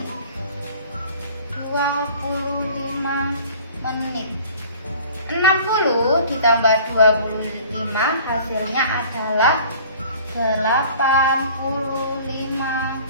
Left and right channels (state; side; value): inverted; both; correlation -0.47